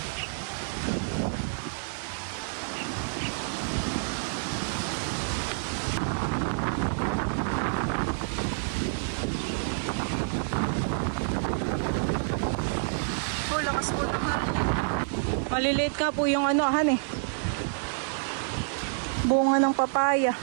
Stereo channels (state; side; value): silent; left; digital silence